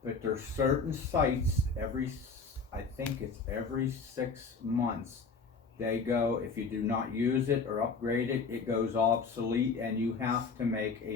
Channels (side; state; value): right; quieter; 4.7 dB